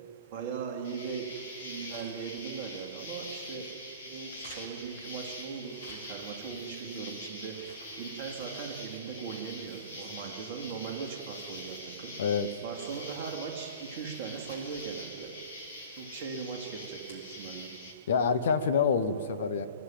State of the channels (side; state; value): both; inverted; correlation -0.41